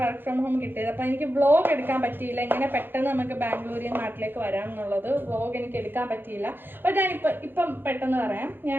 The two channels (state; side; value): late; left; 0.099 ms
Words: വർക്ക് ഫ്രം ഹോം കിട്ടിയത്. അപ്പം എനിക്ക് വ്ളോഗ് എടുക്കാൻ പറ്റിയില്ല. ഇങ്ങനെ പെട്ടെന്ന് നമുക്ക് ബാംഗ്ലൂരിൽ നാട്ടിലേക്ക് വരാം എന്നുള്ളത് വ്ളോഗ് എനിക്ക് എടുക്കാൻ പറ്റിയില്ല. അപ്പോൾ ഇപ്പം പെട്ടെന്ന് പറയാം.